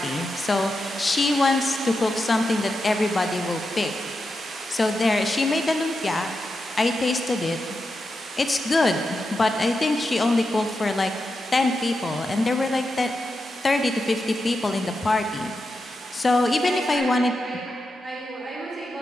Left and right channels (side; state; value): both; normal; correlation 0.88